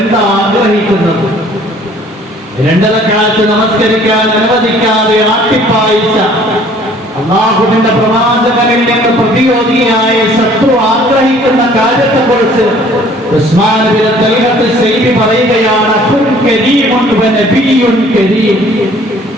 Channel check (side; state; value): both; normal; correlation 0.55